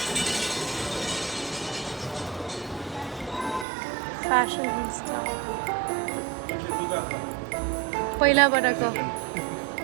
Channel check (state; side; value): drops out; left; at 3.7 s